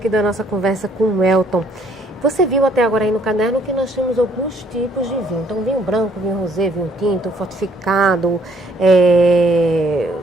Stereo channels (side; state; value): both; normal; correlation 0.65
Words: da nossa conversa com o Elton. Você viu até agora aí no caderno que nós temos alguns tipos de vinho. Então, vinho branco, vinho rosé, vinho tinto, fortificado,